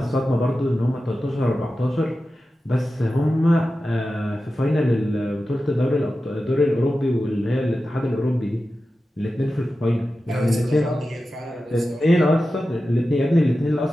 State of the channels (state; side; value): normal; both; correlation 0.93